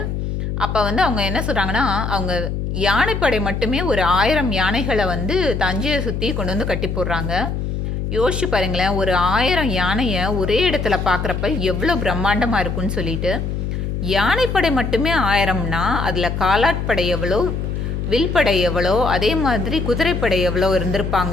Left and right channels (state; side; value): noise; left; hum, 3 dB below the sound